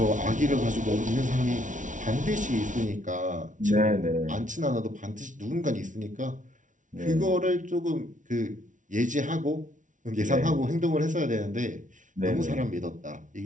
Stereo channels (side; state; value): left; late; 0.37 ms